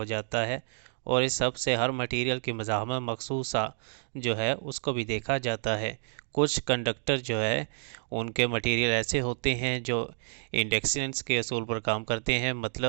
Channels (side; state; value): left; silent; digital silence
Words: जाता है, और इस सब से हर मटीरियल की मज़ाहमत मखसूसा जो है उसको भी देखा जाता है। कुछ कंडक्टर जो है उनके मटीरियल ऐसे होते हैं जो इंडक्शंस के असूल पर काम करते हैं,